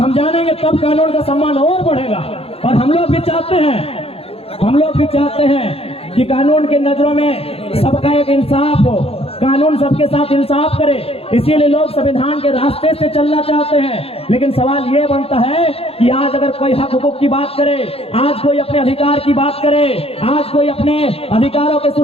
जानेंगे तब कानून का सम्मान और बढ़ेगा। और हम लोग भी चाहते हैं कि कानून की नजरों में सबका एक इंसाफ हो, कानून सबके साथ इंसाफ करे, इसीलिए लोग संविधान के रास्ते से चलना चाहते हैं। लेकिन सवाल ये बनता है कि आज अगर कोई हक हुकूक की बात करे, आज कोई अपने अधिकार की बात करे, आज कोई अपने अधिकारों की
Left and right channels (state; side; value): late; right; 0.28 ms